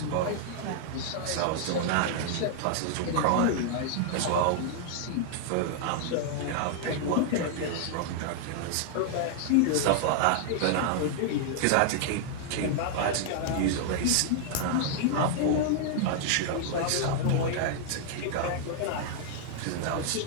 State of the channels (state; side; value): different; both; correlation -0.01